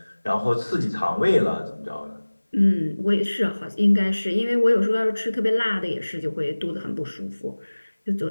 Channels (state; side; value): inverted; both; correlation -1.00